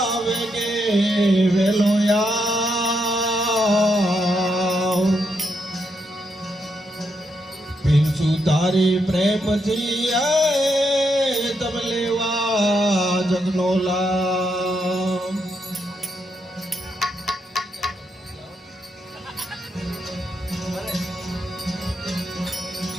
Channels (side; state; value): both; normal; correlation 0.80